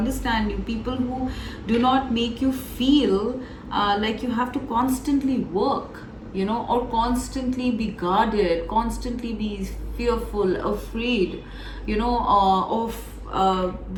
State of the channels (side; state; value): both; identical; correlation 1.00